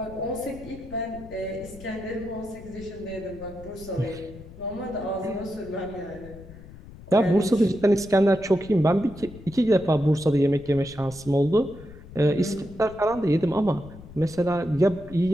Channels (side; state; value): left; noise; rumble, 17 dB below the sound